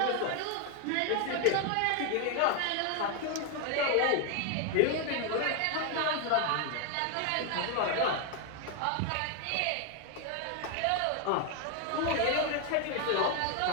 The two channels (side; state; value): both; different; correlation 0.01